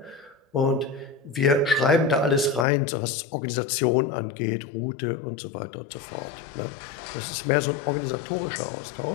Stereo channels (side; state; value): right; drops out; at 2.7 s